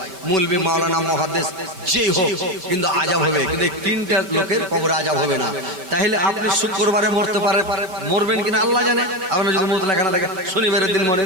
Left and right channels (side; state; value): left; late; 5.3 ms